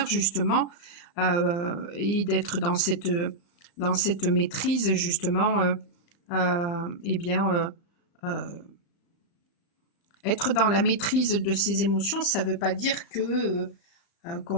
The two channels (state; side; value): late; right; 35 ms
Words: justement, et d'être dans cette maîtrise justement, être dans la maîtrise de ses émotions, ça ne veut pas dire que